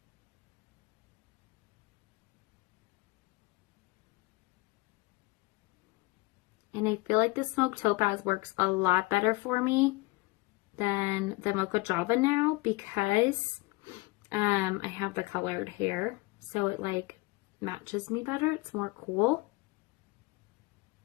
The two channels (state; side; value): quieter; right; 22.7 dB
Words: And I feel like the smoked topaz works a lot better for me than the Mocha Java now because I have the colored hair. So it like matches me better. It's more cool.